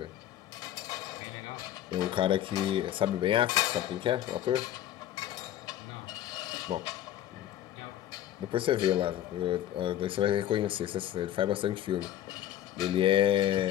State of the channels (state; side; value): quieter; right; 12.2 dB